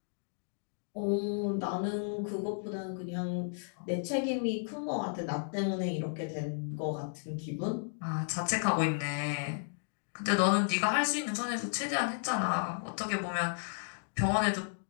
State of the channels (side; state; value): right; silent; digital silence